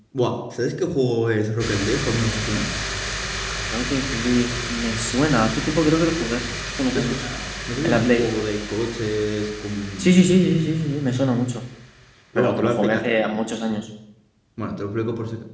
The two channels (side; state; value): both; identical; correlation 1.00